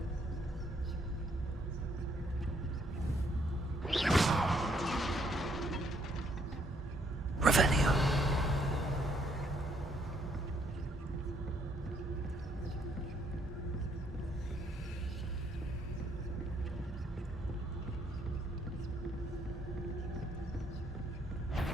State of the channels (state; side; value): normal; both; correlation 0.69